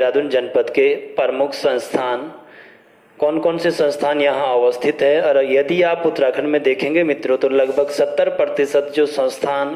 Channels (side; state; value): both; identical; correlation 1.00